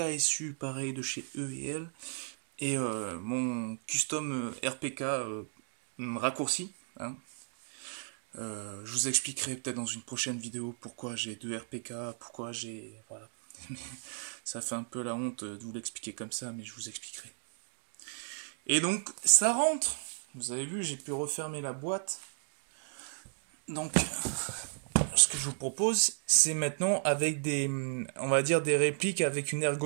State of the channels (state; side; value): silent; left; digital silence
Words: pareil de chez E&L, et mon custom RPK raccourci. Hein. Je vous expliquerai peut-être dans une prochaine vidéo pourquoi j'ai 2 RPK, pourquoi j'ai... Voilà. Ça fait un peu la honte de vous l'expliquer comme ça, mais je vous expliquerai. Et donc, ça rentre. Vous avez vu, j'ai pu refermer la boîte. Donc, ce que je vous propose, c'est maintenant avec des, on va dire, des répliques avec une